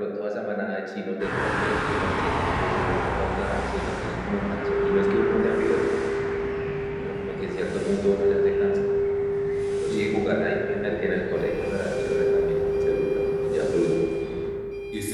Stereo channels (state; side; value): identical; both; correlation 1.00